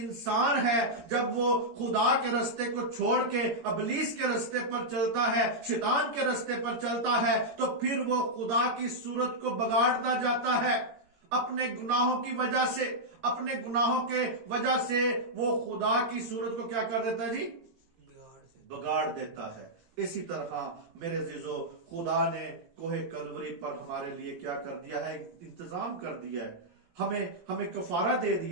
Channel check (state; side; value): late; left; 17 ms